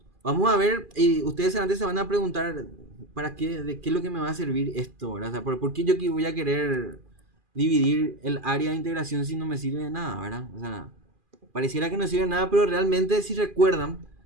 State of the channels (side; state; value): left; late; 2.4 ms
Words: Vamos a ver, y ustedes antes se van a preguntar, ¿para qué? ¿De qué es lo que me va a servir esto? ¿Verdad? O sea, ¿por qué yo voy a querer dividir el área de integración si no me sirve de nada, ¿verdad? O sea, pareciera que no sirve de nada, pero realmente si recuerdan,